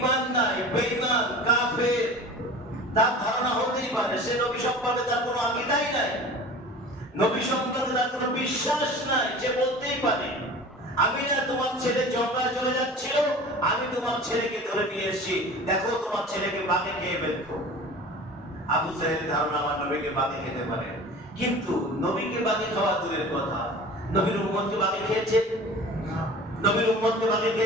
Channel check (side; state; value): both; normal; correlation 0.39